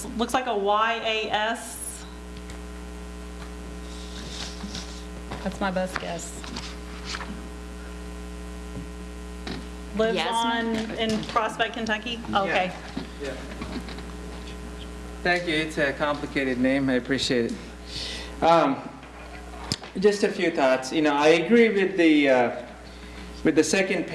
looks like a YAS. That's my best guess. Lives in Prospect, Kentucky? Okay. Yeah. Thank you. It's a complicated name. I appreciate it. Just a few thoughts. I agree with the second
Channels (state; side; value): identical; both; correlation 1.00